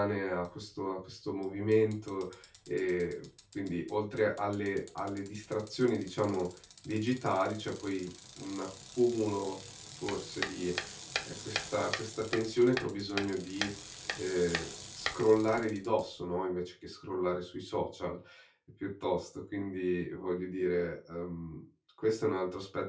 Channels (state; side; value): identical; both; correlation 1.00